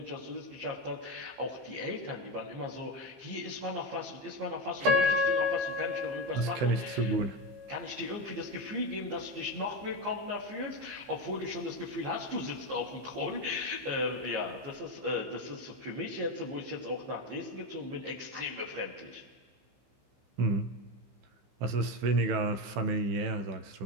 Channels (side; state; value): left; late; 15 ms